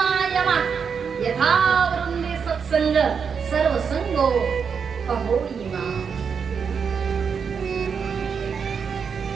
यथा वृंदे सत्संग सर्वसंगो पहोयिमा।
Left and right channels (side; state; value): left; quieter; 6.4 dB